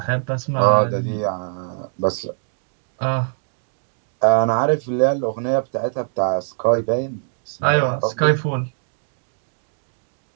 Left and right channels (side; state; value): left; silent; digital silence